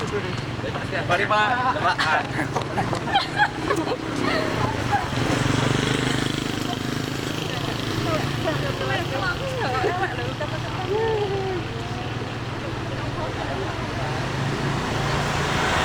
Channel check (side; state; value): both; identical; correlation 1.00